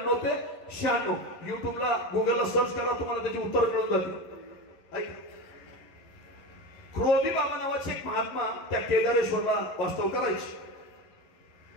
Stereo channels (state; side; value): late; right; 11 ms